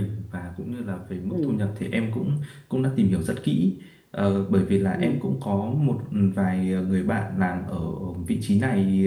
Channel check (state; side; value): identical; both; correlation 1.00